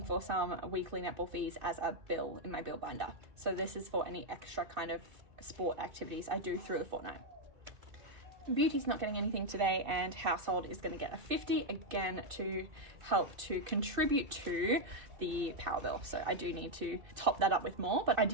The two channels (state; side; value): late; left; 2.6 ms